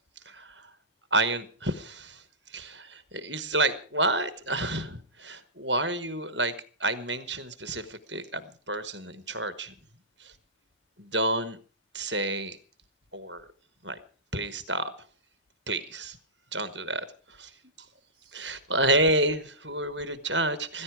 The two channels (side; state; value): both; normal; correlation -0.20